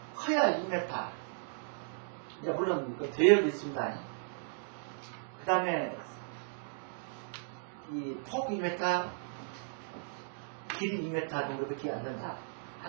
커야 2m. 이제 물론 이거 대역도 있습니다. 그 다음에 이 폭 2m, 길이 2m 정도밖에 안 된다.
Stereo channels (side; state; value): left; silent; digital silence